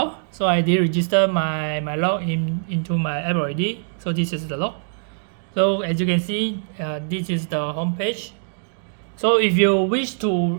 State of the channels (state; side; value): silent; left; digital silence